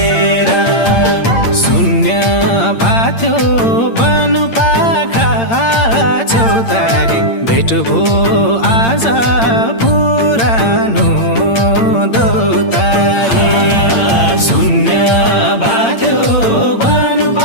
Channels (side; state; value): right; late; 8.8 ms